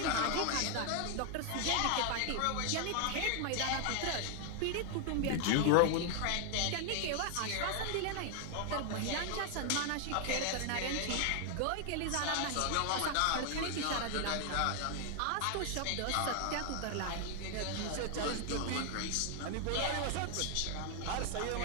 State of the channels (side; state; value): both; different; correlation 0.00